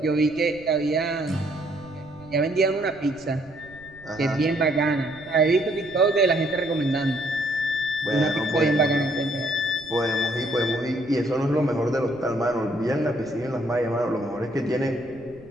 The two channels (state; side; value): noise; right; rumble, 23 dB below the sound